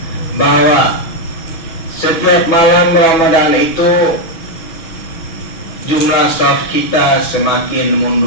bahwa setiap malam Ramadan itu jumlah shaf kita semakin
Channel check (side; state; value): right; late; 6.1 ms